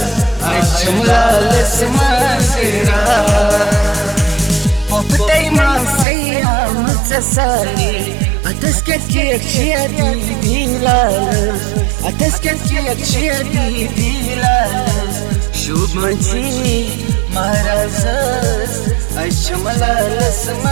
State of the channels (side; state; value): left; drops out; at 6.1 s